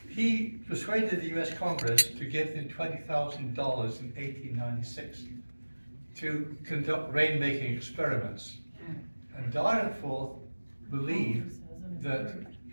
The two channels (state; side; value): inverted; both; correlation -1.00